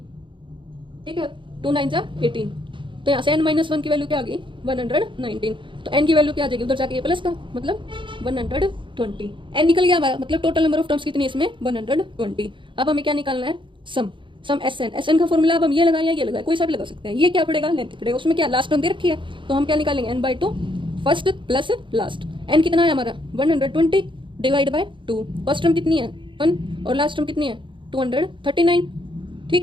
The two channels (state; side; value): late; left; 0.24 ms